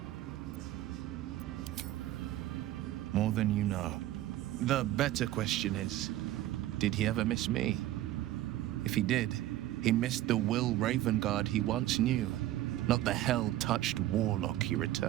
More than you know. The better question is, did he ever miss me? If he did, he missed the Will Ravengard he once knew, not the hell-touched warlock he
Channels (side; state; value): left; quieter; 14.4 dB